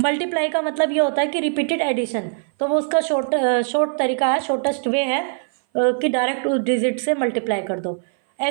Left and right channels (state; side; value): silent; left; 59 dB below the other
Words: का मतलब ये होता है कि रिपीटेड एडिशन, तो वो उसका शॉर्ट तरीका है, शॉर्टेस्ट वे है कि डायरेक्ट उस डिजिट से मल्टीप्लाई कर दो।